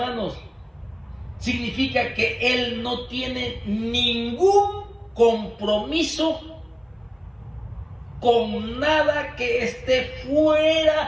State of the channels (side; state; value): both; identical; correlation 1.00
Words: significa que Él no tiene ningún compromiso con nada que esté